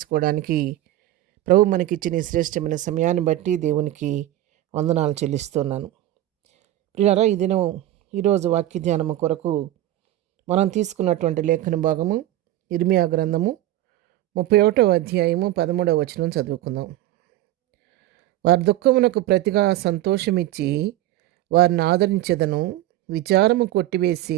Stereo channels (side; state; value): left; quieter; 14.3 dB